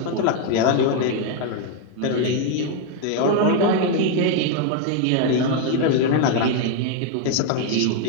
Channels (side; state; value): both; different; correlation 0.01